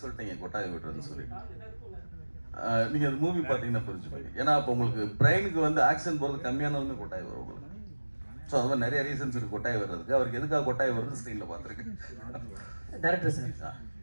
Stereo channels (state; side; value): inverted; both; correlation -1.00